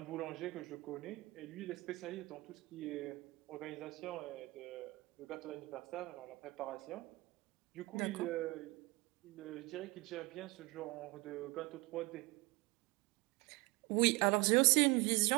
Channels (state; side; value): quieter; left; 23.9 dB